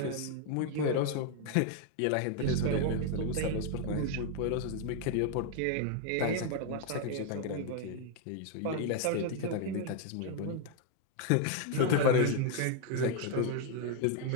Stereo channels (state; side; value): different; both; correlation 0.00